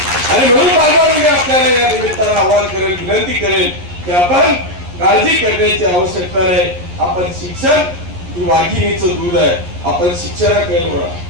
आणि म्हणून बांधवांमध्ये आपल्याला या निमित्तानं आव्हान करेल, विनंती करेल की आपण काळजी करण्याची आवश्यकता नाही. आपण शिक्षण ही वाघिणीचं दूध आहे. आपण शिक्षणाकडे वळा.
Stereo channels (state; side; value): late; left; 11 ms